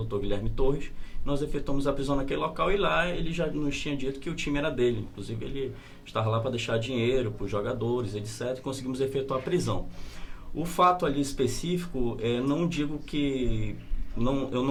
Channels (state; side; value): identical; both; correlation 1.00